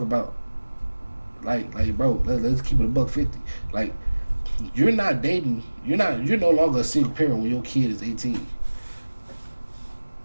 about like bro, let's keep it a $150. Like you're not dating, you're no longer a single parent when your kid is 18.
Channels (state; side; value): inverted; both; correlation -1.00